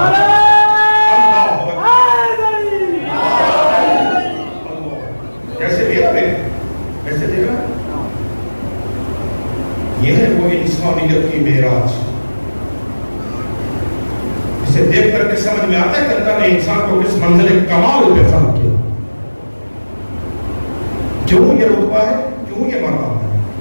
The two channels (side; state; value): both; inverted; correlation -1.00